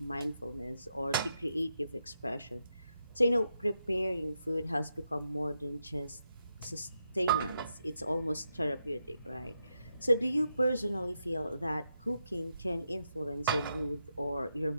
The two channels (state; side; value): inverted; both; correlation -0.83